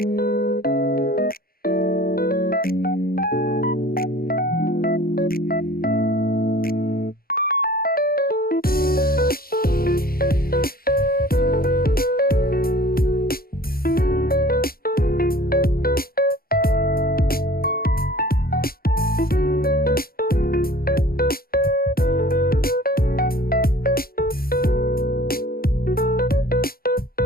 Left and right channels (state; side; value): late; right; 0.43 ms